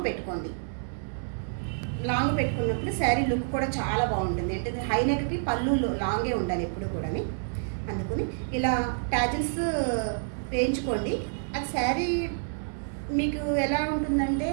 పెట్టుకోండి. లాంగ్ పెట్టుకున్నప్పుడు శారీ లుక్ కూడా చాలా బాగుంటుంది. ఏంటంటే హైనెక్కి పళ్ళు లాంగే ఉండాలి ఎప్పుడు కూడా. అందుకని ఇలా ట్యాజిల్స్ వేయించుకోండి. అది శారీ మీకు ఎలా ఉంటుందంటే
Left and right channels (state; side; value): silent; left; digital silence